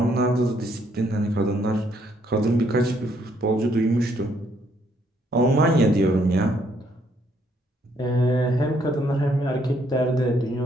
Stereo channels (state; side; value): normal; both; correlation 0.70